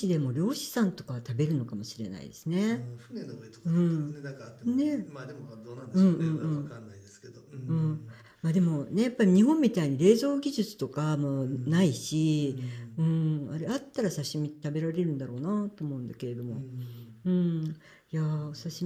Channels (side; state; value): both; identical; correlation 1.00